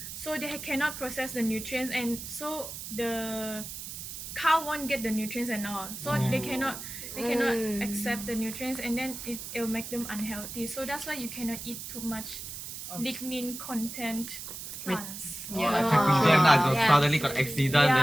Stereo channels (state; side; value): noise; right; hiss, 9 dB below the sound